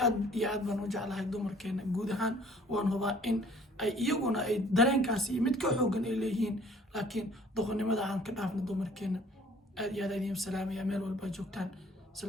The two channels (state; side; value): normal; both; correlation 0.55